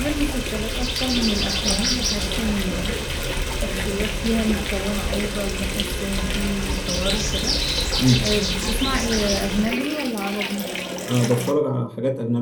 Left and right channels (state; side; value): identical; both; correlation 1.00